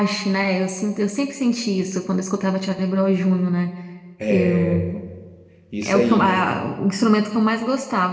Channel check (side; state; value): both; identical; correlation 1.00